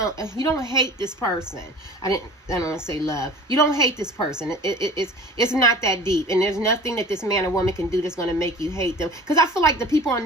hate this person. I don't want to say love. You don't hate this person. It's not that deep, and there's nothing that this man or woman can do that's going to make you hate them. Because I feel like the people on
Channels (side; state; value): both; normal; correlation 0.42